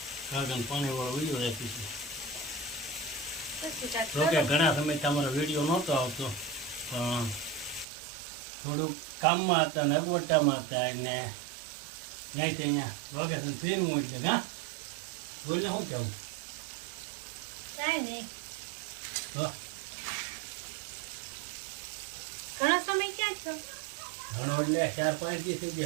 કાકાને પાણી વાળો વિડીયો આપી છે. પછી કાક જોકે ઘણા સમય તમારો વિડીયો નહોતો આવતો પણ થોડુંક કામમાં હતા ને અગવડતામાં હતા એટલે ત્યાંથી અહીંયા લોકેશન ફેરવું એટલે હા બોલને શું કહેવું કાંઈ નહીં. તો ઘણો સમય ક્યાં છો ઘણો એટલે 4-5 દી થઈ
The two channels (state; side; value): drops out; left; at 7.9 s